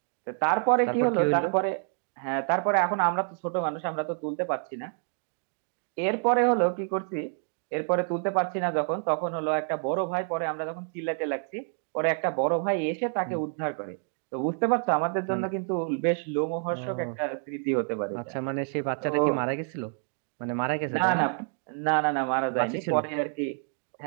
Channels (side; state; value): left; silent; 59 dB below the other